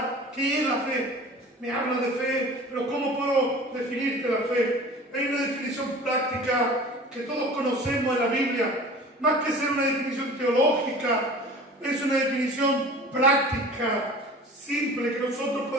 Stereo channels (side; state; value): both; normal; correlation 0.41